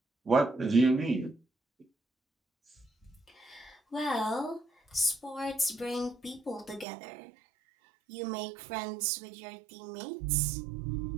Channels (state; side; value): drops out; left; at 6.9 s